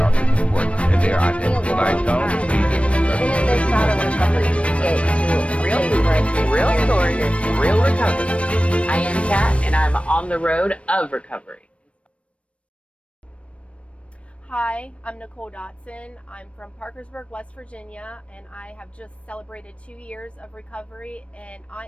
important in their identity. When I don't see this, Even if it's not a recovery, it's real stories, real stories, real recovery. I am Kat, and I'm on the road of recovery. Hi, I'm Nicole Dotson. I'm from Parkersburg, West Virginia, and I have just celebrated 2 years of recovery, and I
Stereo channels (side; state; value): right; late; 0.062 ms